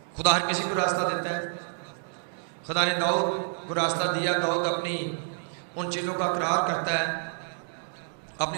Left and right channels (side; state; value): left; silent; digital silence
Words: خدا ہر کسی کو راستہ دیتا ہے. خدا نے داؤد کو راستہ دیا. داؤد اپنی ان چیزوں کا اقرار کرتا ہے,